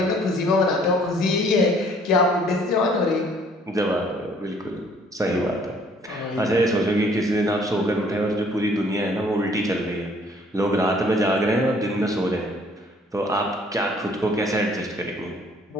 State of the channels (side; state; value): both; normal; correlation 0.59